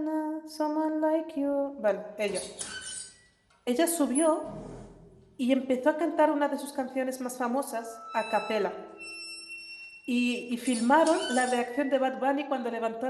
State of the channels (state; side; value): identical; both; correlation 1.00